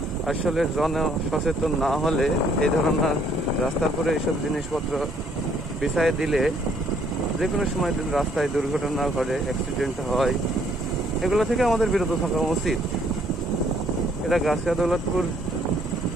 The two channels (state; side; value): normal; both; correlation 0.65